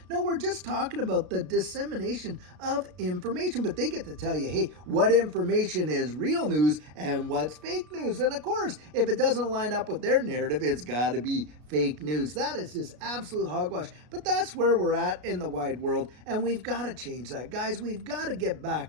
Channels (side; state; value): left; late; 33 ms